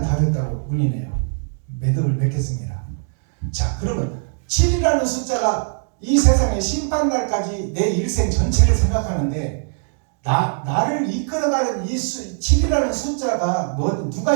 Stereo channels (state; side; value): silent; left; digital silence